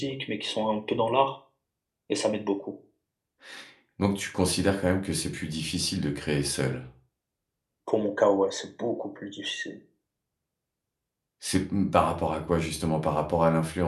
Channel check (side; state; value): both; identical; correlation 1.00